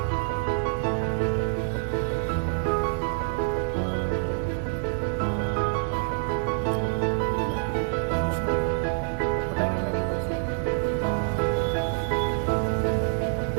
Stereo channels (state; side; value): silent; left; 61 dB below the other